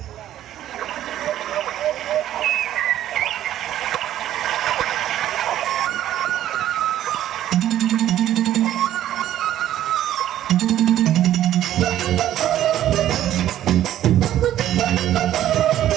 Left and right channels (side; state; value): left; quieter; 12.3 dB